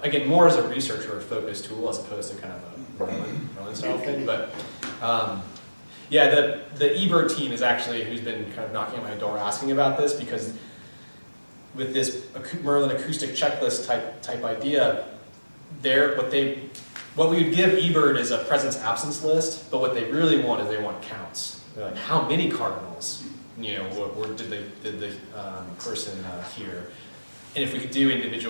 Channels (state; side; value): inverted; both; correlation -1.00